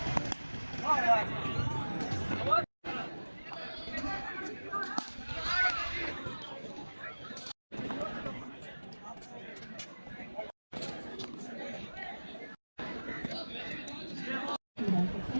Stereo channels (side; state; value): both; inverted; correlation -1.00